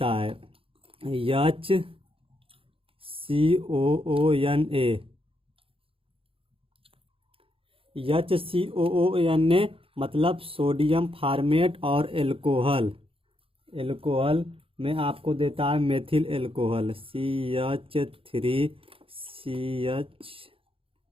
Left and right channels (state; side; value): late; left; 0.27 ms